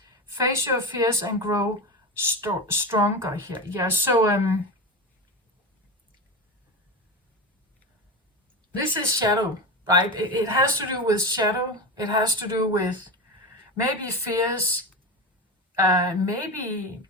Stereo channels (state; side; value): normal; both; correlation 0.22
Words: Face your fears and grow stronger here. Yeah, so this is shadow, right? It has to do with shadow. It has to do with maybe fears, maybe